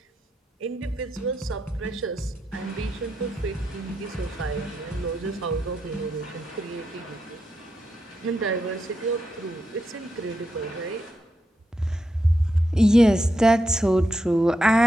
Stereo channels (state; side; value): normal; both; correlation 0.84